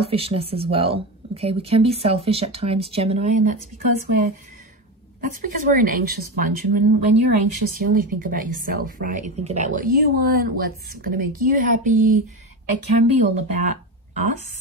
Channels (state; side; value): normal; both; correlation 0.19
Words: as well. Okay, we can be selfish at times, Gemini, and that's because we're an anxious bunch. And when you're anxious, you only think about yourself, right? You think about what you want, what's going to make you happy. It can be all about